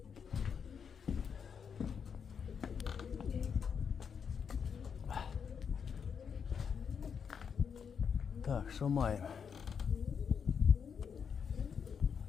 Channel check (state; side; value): quieter; right; 6.8 dB